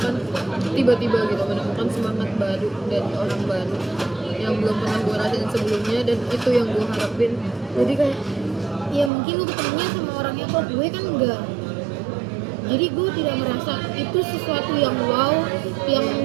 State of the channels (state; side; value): drops out; left; at 9.1 s